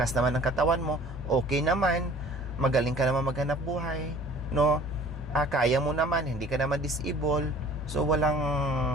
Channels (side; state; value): both; normal; correlation 0.49